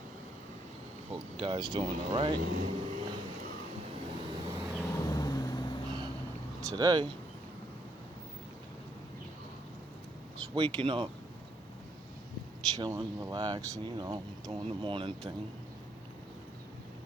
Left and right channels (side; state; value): both; normal; correlation 0.73